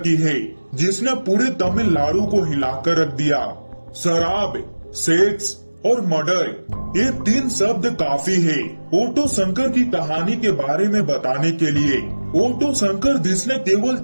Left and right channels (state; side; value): inverted; both; correlation -1.00